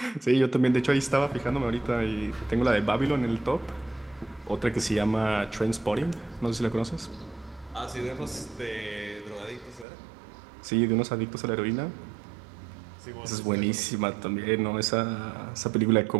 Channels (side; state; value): left; drops out; at 9.9 s